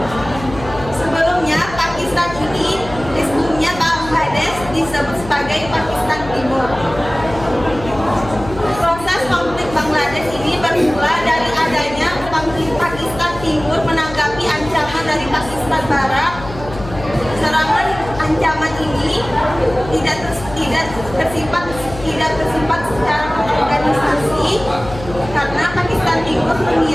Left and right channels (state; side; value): noise; left; hum, 13 dB below the sound